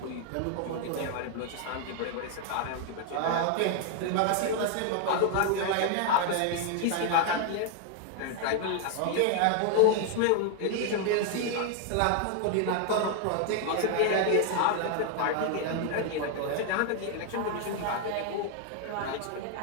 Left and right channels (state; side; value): different; both; correlation 0.00